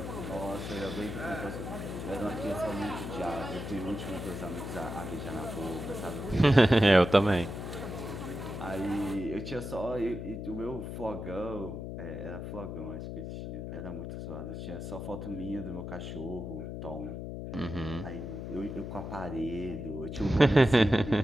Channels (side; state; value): left; noise; hum, 6 dB below the sound